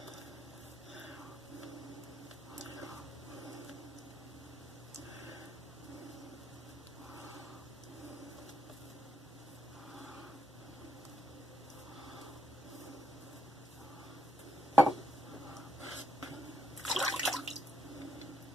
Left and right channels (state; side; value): normal; both; correlation 0.77